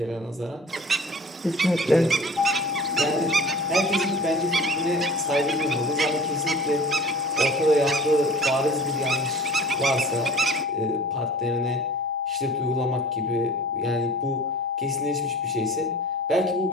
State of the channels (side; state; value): both; normal; correlation 0.43